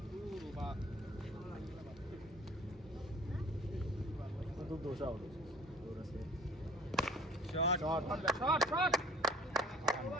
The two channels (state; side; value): normal; both; correlation 0.51